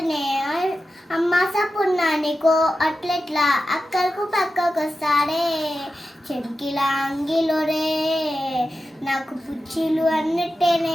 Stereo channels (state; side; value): normal; both; correlation 0.92